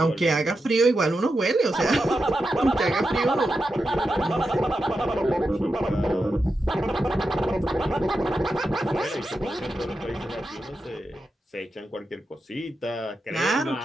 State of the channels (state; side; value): normal; both; correlation 0.88